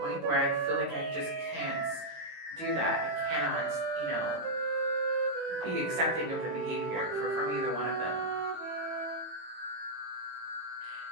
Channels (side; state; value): left; late; 18 ms